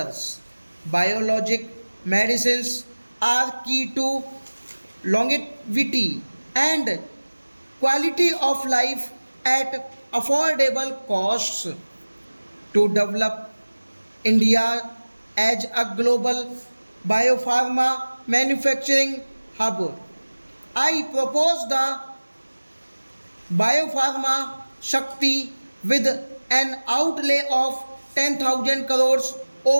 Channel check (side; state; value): both; inverted; correlation -1.00